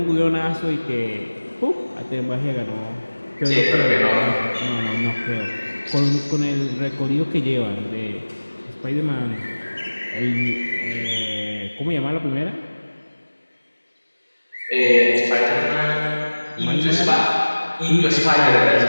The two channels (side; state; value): both; inverted; correlation -1.00